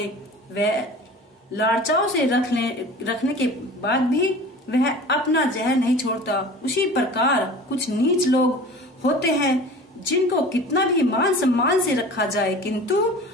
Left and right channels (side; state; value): both; normal; correlation 0.40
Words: वह लाड़चाओं से रखने के बाद भी वह अपना जहर नहीं छोड़ता। उसी प्रकार कुछ नीच लोग होते हैं जिनको कितना भी मान सम्मान से रखा जाए किंतु